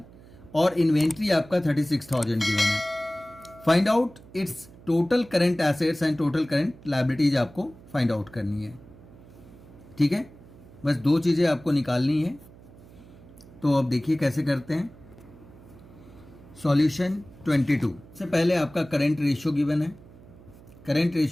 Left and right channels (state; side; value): noise; right; hum, 22 dB below the sound